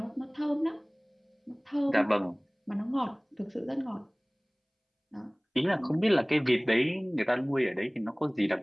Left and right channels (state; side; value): identical; both; correlation 1.00